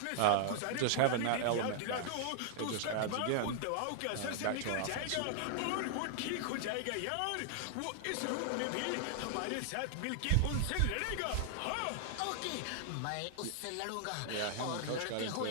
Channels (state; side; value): different; both; correlation -0.01